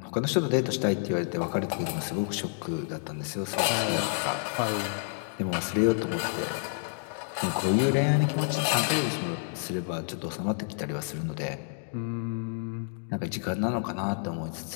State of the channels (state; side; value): silent; right; digital silence